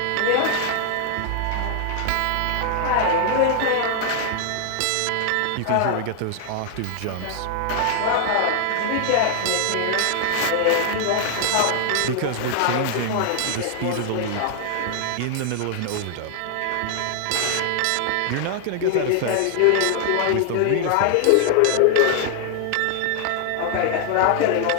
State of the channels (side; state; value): both; different; correlation 0.00